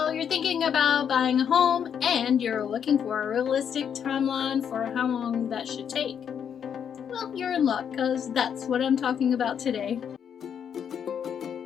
you're thinking about buying a home and you're looking for a realistic timeline for how long that should take. Well, you're in luck because that's what I'm talking about today.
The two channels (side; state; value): right; quieter; 8.1 dB